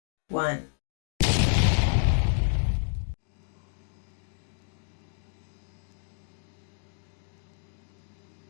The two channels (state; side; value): silent; right; digital silence